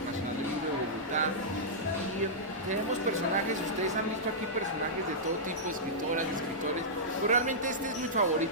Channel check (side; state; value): both; normal; correlation -0.12